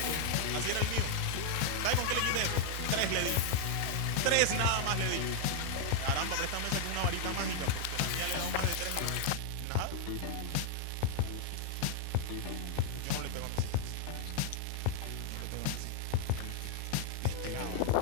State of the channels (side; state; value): both; different; correlation 0.00